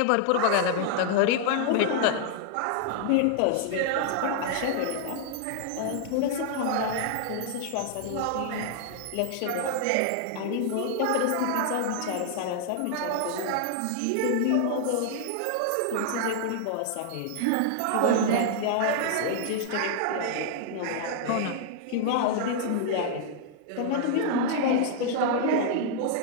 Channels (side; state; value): both; different; correlation -0.01